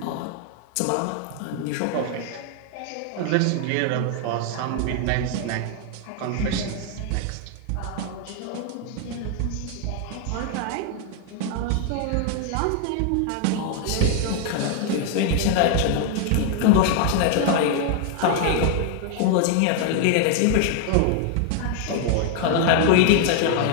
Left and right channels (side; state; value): both; different; correlation 0.00